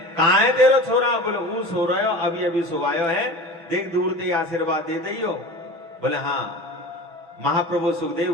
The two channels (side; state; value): left; late; 5.9 ms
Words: कहाँ है तेरो छोरा? बोले वो सो रहे हो, अभी अभी सोवायो है, देख दूर ते आशीर्वाद दे दियो। बोले हाँ। महाप्रभु सुखदेव